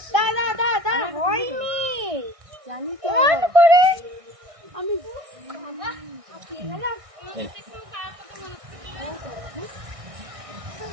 দাদা দাদা হয়নি জানি তো করে আমি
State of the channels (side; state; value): left; late; 1.6 ms